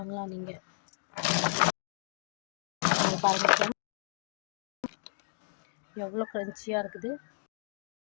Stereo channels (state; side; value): silent; right; digital silence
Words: நீங்கள் பாருங்க எவ்வளோ க்ரன்ச்சியாக இருக்குது.